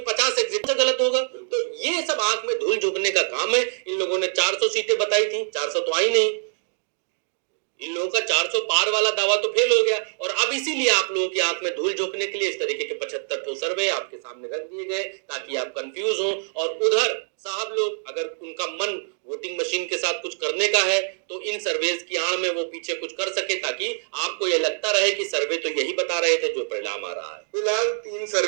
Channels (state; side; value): silent; left; digital silence